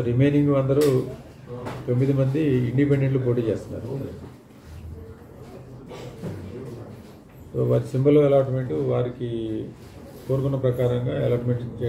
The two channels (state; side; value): identical; both; correlation 1.00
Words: రిమైనింగ్ అందరూ 9 మంది ఇండిపెండెంట్లు పోటీ చేస్తున్నారు. సో వారి సింబల్ అలాట్మెంట్ వారికి కోరుకున్న ప్రకారంగా అలాట్మెంట్